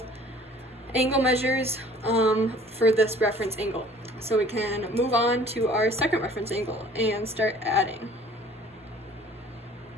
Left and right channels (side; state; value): both; normal; correlation 0.52